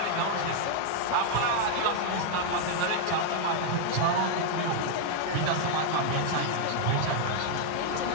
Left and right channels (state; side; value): different; both; correlation 0.00